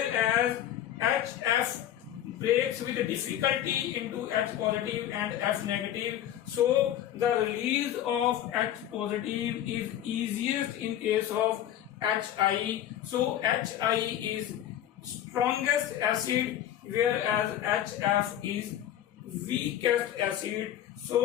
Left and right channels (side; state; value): right; quieter; 11.4 dB